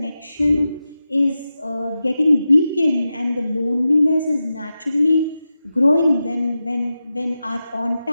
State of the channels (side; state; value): both; inverted; correlation -0.91